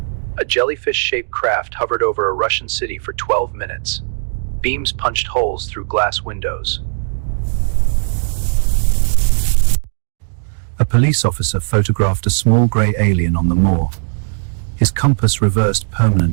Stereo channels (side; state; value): left; silent; 66 dB below the other